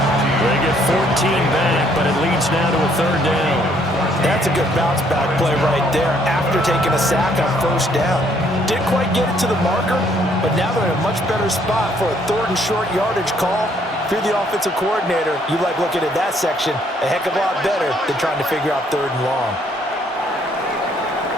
They get 14 back, but it leads now to a 3rd down. That's a good bounce back play right there after taking a sack on 1st down. Didn't quite get it to the marker, but now they're in a much better spot for a 3rd and short yardage call. If you're the offensive coordinator, you like looking at that section a heck of a lot better than trying to figure out 3rd and long.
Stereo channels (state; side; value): normal; both; correlation 0.66